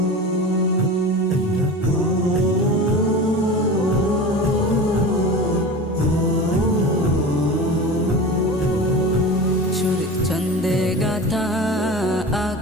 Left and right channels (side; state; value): both; normal; correlation 0.31